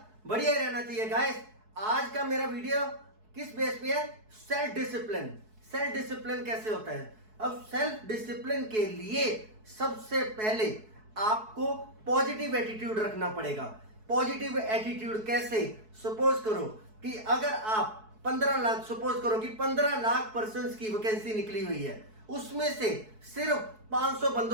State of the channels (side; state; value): left; late; 4.6 ms